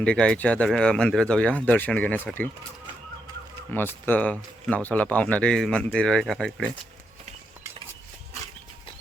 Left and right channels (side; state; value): both; normal; correlation 0.81